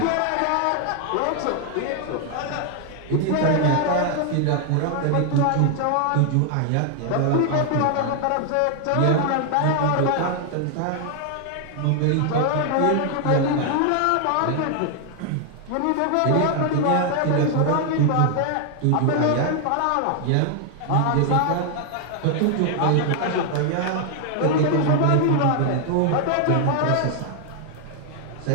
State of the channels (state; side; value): different; both; correlation 0.00